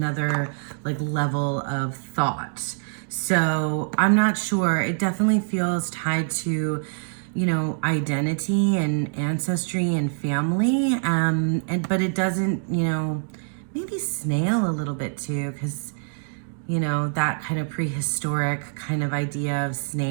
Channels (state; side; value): silent; left; digital silence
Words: like level of thought. So I'm not sure. It definitely feels tied to, you know, identity and ancestry and family. But it doesn't, you know, maybe Snail a little bit too, because, you know, that kind of prehistoric kind of idea of